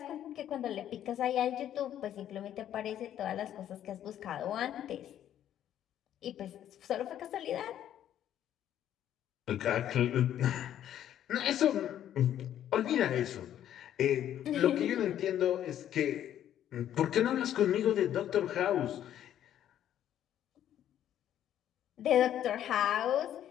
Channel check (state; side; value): quieter; right; 11.0 dB